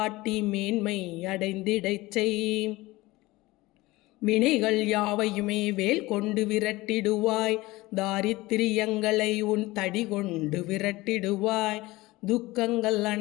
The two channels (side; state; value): right; quieter; 20.0 dB